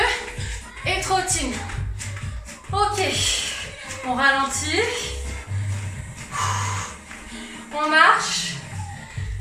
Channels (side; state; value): both; identical; correlation 1.00